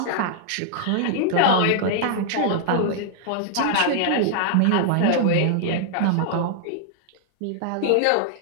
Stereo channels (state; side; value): different; both; correlation -0.01